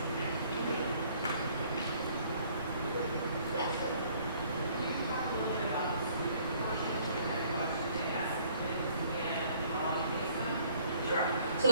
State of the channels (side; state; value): both; inverted; correlation -0.60